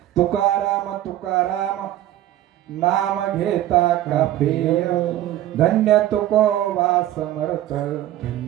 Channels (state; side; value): quieter; left; 13.4 dB